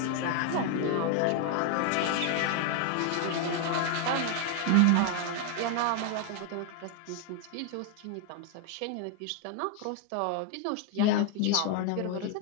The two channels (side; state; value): both; different; correlation 0.01